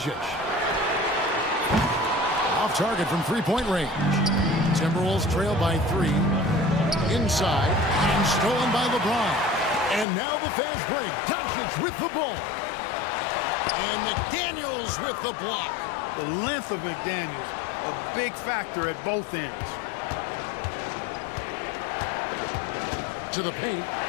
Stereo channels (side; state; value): right; drops out; at 10.1 s